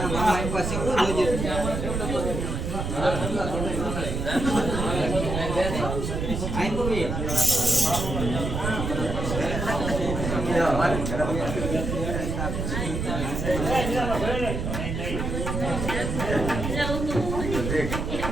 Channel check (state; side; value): noise; right; rumble, 3 dB below the sound